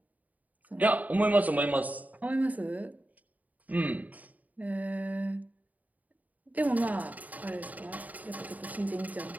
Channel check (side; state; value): left; late; 0.075 ms